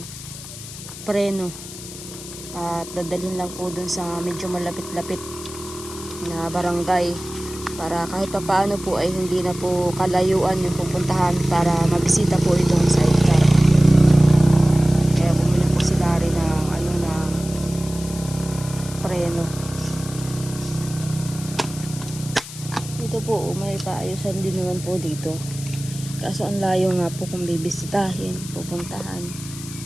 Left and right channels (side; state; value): left; noise; hiss, 13 dB below the sound